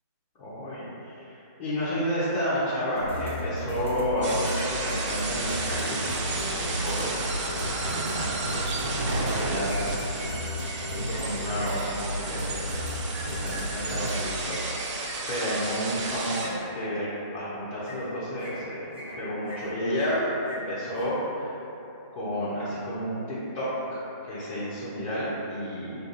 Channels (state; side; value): inverted; both; correlation -0.38